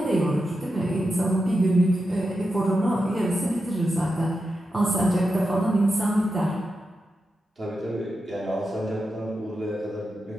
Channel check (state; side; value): normal; both; correlation 0.89